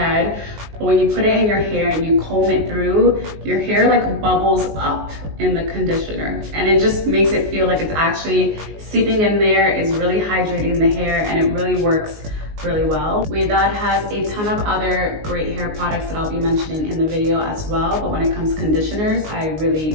But when you put it in your hair and you comb it through, your hair like bubbles up in the conditioner. And it just makes it feel like it's actually seeping in there. It's really hydrating the hair and it really works really well. Ouidad has a ton of other great hair products that I'll be mentioning in the video as well, but when it comes to conditioners, I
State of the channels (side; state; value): left; late; 19 ms